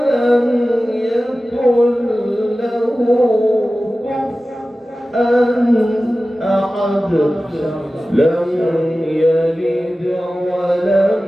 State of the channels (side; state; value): both; normal; correlation 0.95